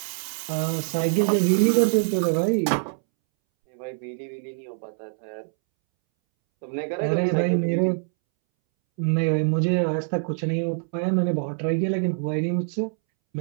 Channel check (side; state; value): left; silent; 62 dB below the other